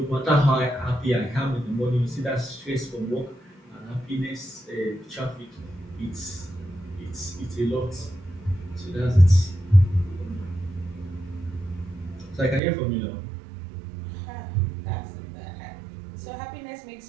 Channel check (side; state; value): left; drops out; at 12.6 s